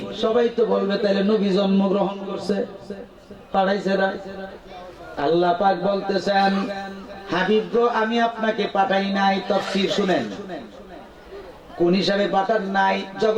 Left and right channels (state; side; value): identical; both; correlation 1.00